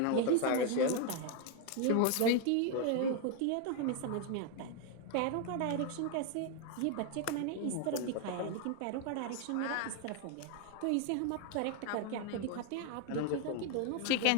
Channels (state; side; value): different; both; correlation 0.01